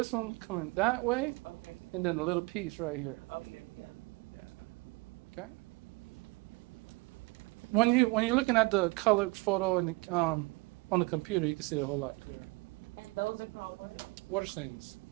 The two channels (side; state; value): left; quieter; 25.9 dB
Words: one coming that way, and then a little piece right here. Yeah. Okay. When you're looking at the colored photo in the, on the computer, you can see it a whole lot clearer. And those are called what? Water stains.